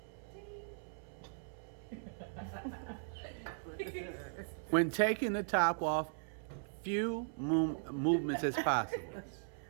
When taking the top off, few movements as possible.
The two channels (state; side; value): silent; left; 52 dB below the other